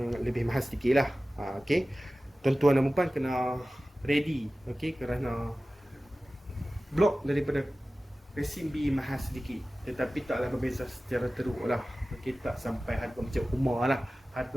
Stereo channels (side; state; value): both; normal; correlation 0.96